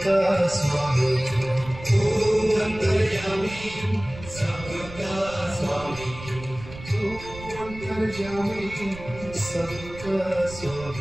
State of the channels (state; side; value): noise; right; rumble, 14 dB below the sound